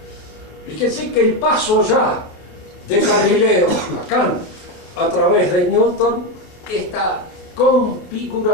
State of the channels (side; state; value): right; late; 28 ms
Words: Fíjense que el paso ya de Galileo a Kant a través de Newton, esta